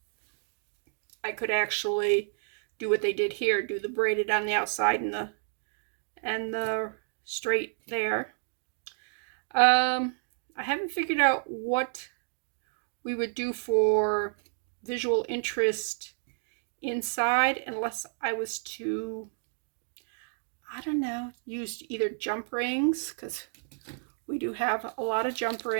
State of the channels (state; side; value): silent; left; digital silence